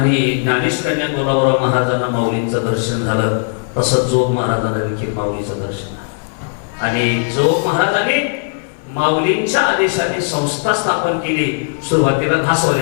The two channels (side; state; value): right; silent; 57 dB below the other